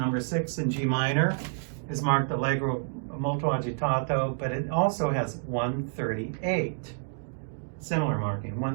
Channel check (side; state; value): left; silent; digital silence